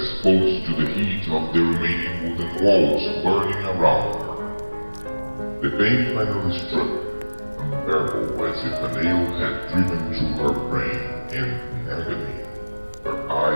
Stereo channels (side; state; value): both; inverted; correlation -1.00